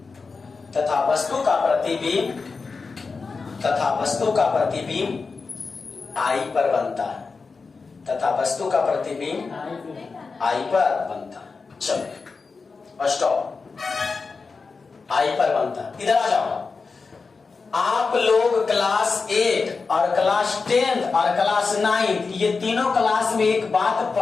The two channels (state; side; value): quieter; right; 4.5 dB